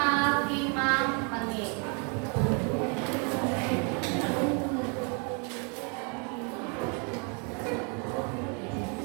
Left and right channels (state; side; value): quieter; left; 36.4 dB